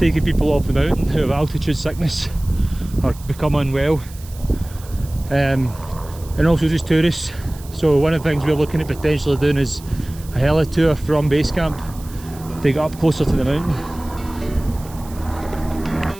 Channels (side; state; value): right; noise; hiss, 20 dB below the sound